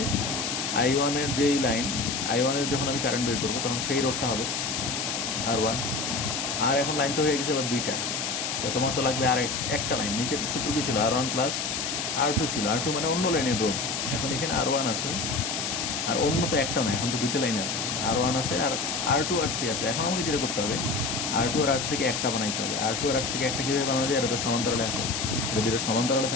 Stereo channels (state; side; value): noise; left; hiss, 2 dB below the sound